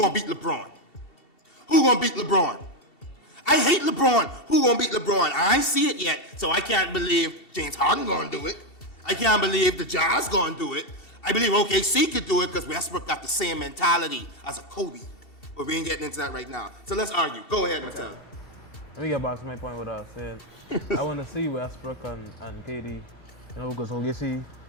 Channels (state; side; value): late; right; 2.7 ms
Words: beat LeBron. Who gonna beat LeBron? I hate LeBron. Who gonna beat LeBron? I ain't see it yet, so I can't believe James Harden gonna do it. I can't believe the Jazz gonna do it. I believe OKC could do it because Westbrook got the same mentality as a Kobe. But we ain't getting into that right now. So let's argue. Go ahead, Mattel. Let me get back to my point what I was saying. I want to see Westbrook and KD, because OKC